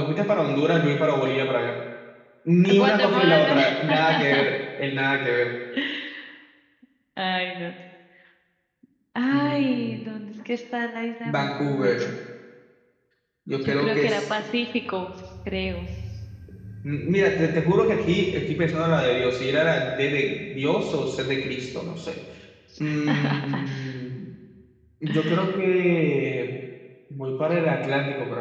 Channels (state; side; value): identical; both; correlation 1.00